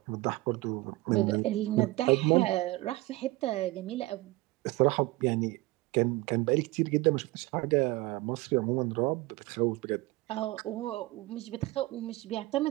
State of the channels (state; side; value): quieter; left; 20.1 dB